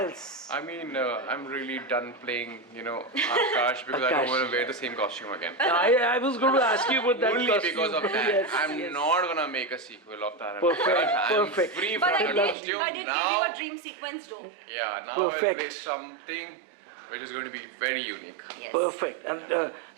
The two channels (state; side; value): drops out; left; at 12.6 s